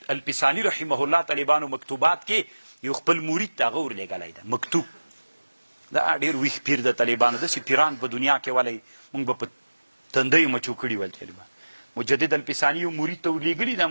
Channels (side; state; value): both; inverted; correlation -1.00